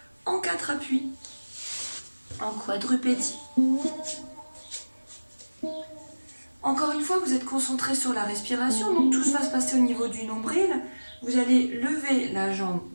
en 4 appuis, en quadrupédie. Encore une fois, vous êtes concentré sur la respiration, donc tout va se passer au niveau du nombril. Vous allez lever la jambe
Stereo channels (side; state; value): both; inverted; correlation -1.00